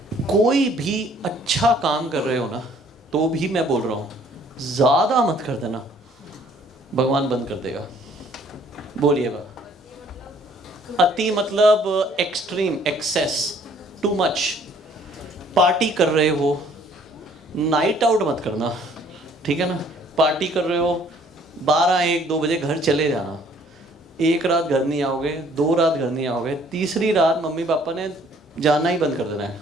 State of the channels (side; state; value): both; normal; correlation 0.59